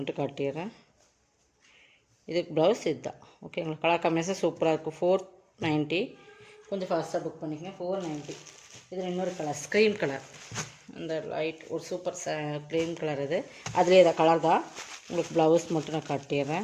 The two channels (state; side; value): identical; both; correlation 1.00